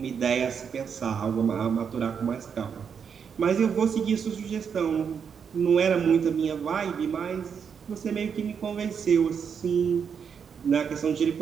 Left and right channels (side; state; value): left; quieter; 6.9 dB